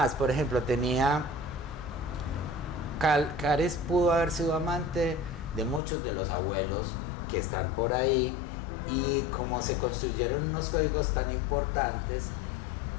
por ejemplo, Caris pudo haber sido amante de muchos de los abuelos que están por ahí, y como se construyeron unos códigos tan importantes,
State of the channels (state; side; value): drops out; right; at 5.8 s